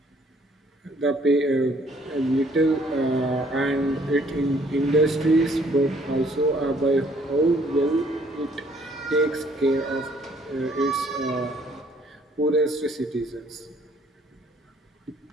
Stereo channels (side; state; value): both; normal; correlation 0.62